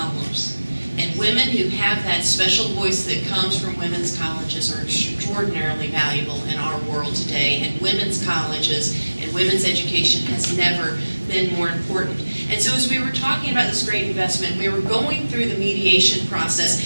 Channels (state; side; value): inverted; both; correlation -1.00